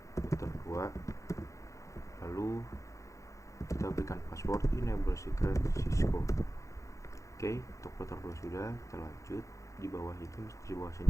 router 2, lalu kita berikan password enable secret Cisco. Oke, untuk router 2 sudah, kita lanjut di bawah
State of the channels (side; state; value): right; late; 0.15 ms